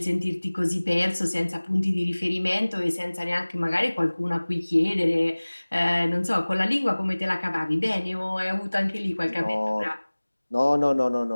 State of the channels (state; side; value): inverted; both; correlation -1.00